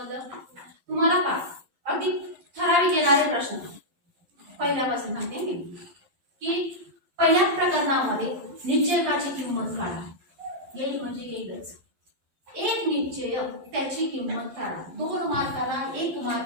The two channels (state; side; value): late; left; 11 ms